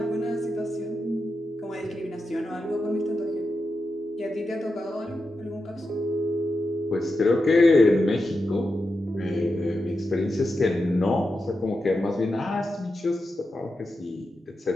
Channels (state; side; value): normal; both; correlation 0.89